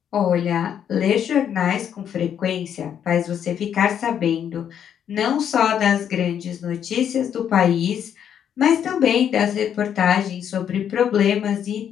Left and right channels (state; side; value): quieter; right; 9.0 dB